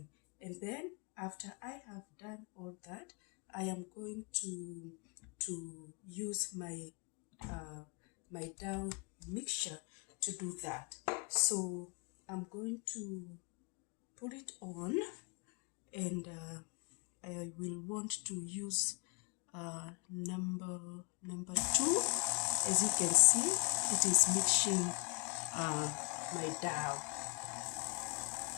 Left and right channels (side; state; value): right; quieter; 32.1 dB